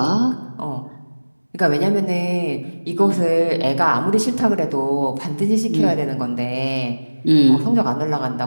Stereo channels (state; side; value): inverted; both; correlation -1.00